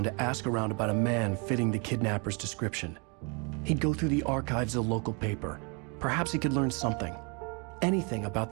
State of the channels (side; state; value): left; quieter; 33.0 dB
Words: to ask around about a man fitting the kidnapper's description. He'd go through the archives of the local paper. Perhaps he could learn something. Anything